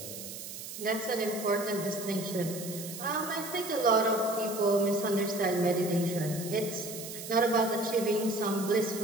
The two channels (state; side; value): noise; right; hiss, 10 dB below the sound